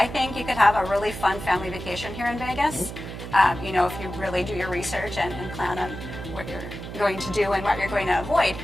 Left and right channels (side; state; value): right; noise; hum, 10 dB below the sound